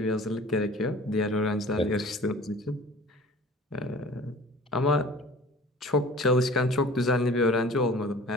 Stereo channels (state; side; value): normal; both; correlation 0.45